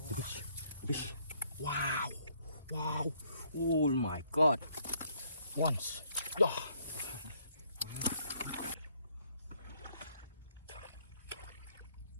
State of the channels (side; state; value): both; inverted; correlation -0.67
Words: Wow. Wow. Oh my God. Once. Yeah.